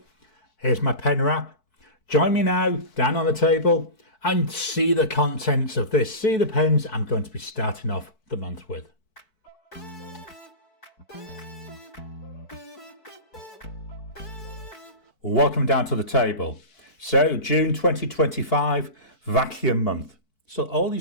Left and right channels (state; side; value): late; right; 4.6 ms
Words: here's my pen wrap. Join me now down on the table and see the contents of this. See the pens I'm going to be starting off the month with. Welcome down to the table. So June 2025, vacuum month. So all